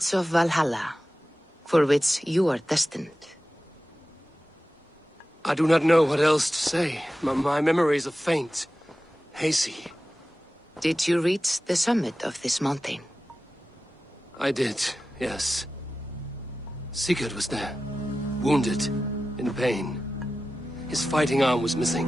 of Valhalla, for which you are destined. I do not know what else to say. My memories are faint, hazy. Did you reach the summit of this mountain? I did, yes. Sigurd was there, wounded, in pain. His fighting arm was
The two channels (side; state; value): both; normal; correlation 0.94